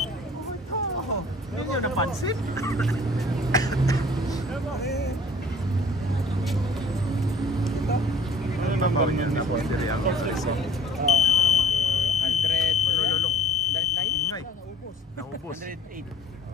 Hindi nyo napansin? Ano ba ba niya? Napundiri ang Alison. 100. Malululong. 109? Ingay. Naubos. 108.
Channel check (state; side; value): normal; both; correlation 0.52